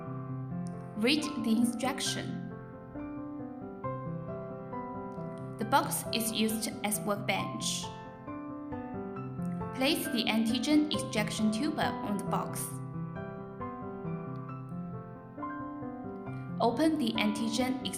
Read the instruction. The box is used as workbench. Place the antigen extraction tube on the box. Open the antigen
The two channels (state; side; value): identical; both; correlation 1.00